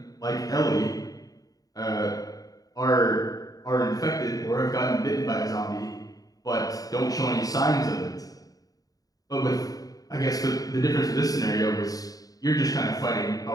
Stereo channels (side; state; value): right; late; 0.18 ms